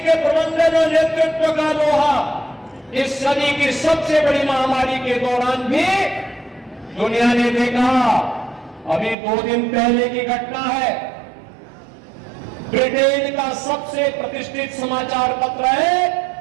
प्रबंधन और नेतृत्व का लोहा इस सदी की सबसे बड़ी महामारी के दौरान भी दुनिया ने देखा। अभी 2 दिन पहले की घटना है, ब्रिटेन का सबसे प्रतिष्ठित समाचार पत्र है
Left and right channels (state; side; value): drops out; left; at 9.2 s